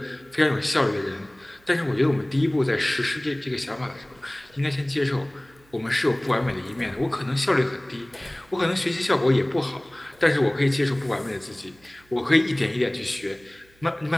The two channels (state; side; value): noise; right; hum, 30 dB below the sound